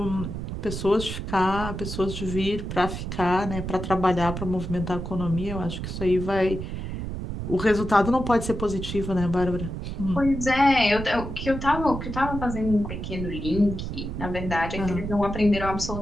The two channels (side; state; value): right; noise; rumble, 6 dB below the sound